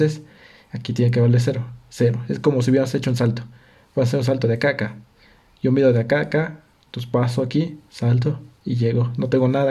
aquí tiene que valer 0. 0. Es como si hubiéramos hecho un salto. Voy a hacer un salto de acá a acá. Yo mido de acá a acá, entonces paso aquí, salto y llego. No tengo nada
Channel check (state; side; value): identical; both; correlation 1.00